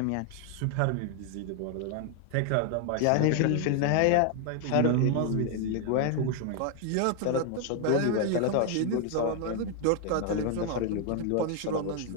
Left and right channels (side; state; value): both; different; correlation 0.00